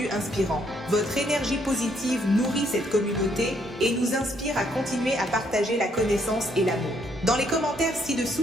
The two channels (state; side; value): normal; both; correlation 0.70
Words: inspirants. Votre énergie positive nourrit cette communauté et nous inspire à continuer à partager la connaissance et l'amour. Dans les commentaires